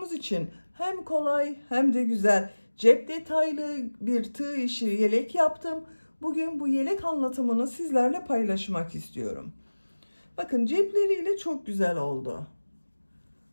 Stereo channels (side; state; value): both; inverted; correlation -1.00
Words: için hem kolay hem de güzel, cep detaylı bir tığ işi yelek yaptım. Bugün bu yelek anlatımını sizlerle paylaşmak istiyorum. Bakın cepleriyle çok güzel oldu.